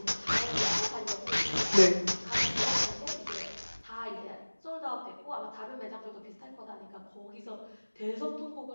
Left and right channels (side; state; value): both; inverted; correlation -1.00